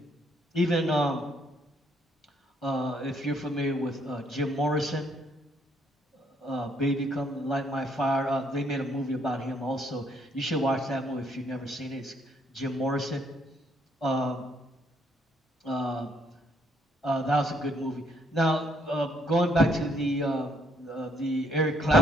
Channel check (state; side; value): normal; both; correlation 0.69